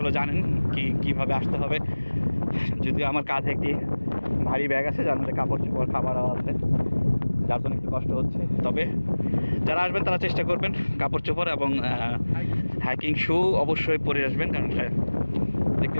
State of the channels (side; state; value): both; inverted; correlation -1.00